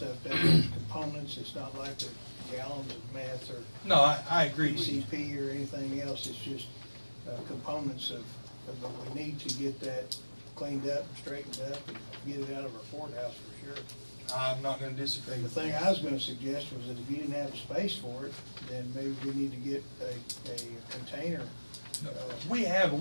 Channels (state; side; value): inverted; both; correlation -1.00